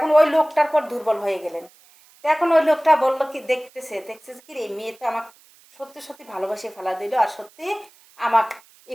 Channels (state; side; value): noise; right; hiss, 28 dB below the sound